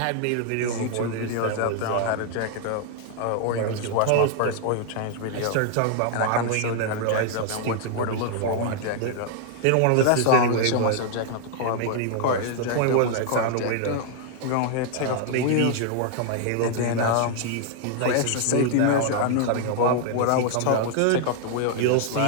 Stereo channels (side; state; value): both; different; correlation 0.00